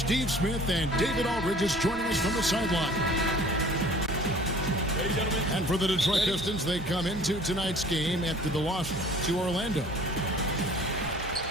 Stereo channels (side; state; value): both; normal; correlation 0.49